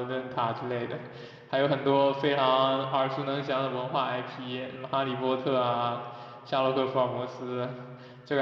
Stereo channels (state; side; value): identical; both; correlation 1.00